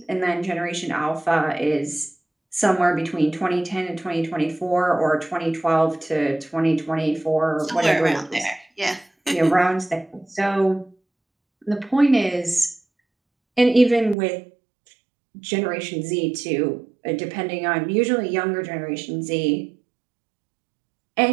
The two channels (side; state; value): left; drops out; at 14.2 s